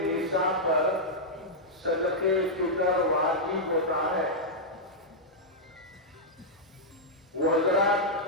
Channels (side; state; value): both; normal; correlation -0.07